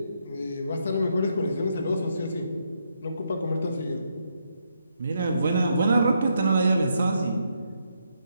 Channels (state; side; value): inverted; both; correlation -0.78